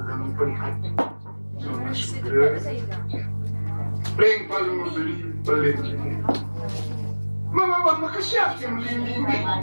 dalam perhati. Nona sudah playing paling beli. Mama maka siap yang melindungi.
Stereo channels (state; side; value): inverted; both; correlation -1.00